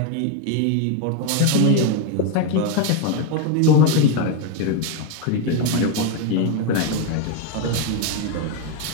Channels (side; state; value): both; different; correlation 0.01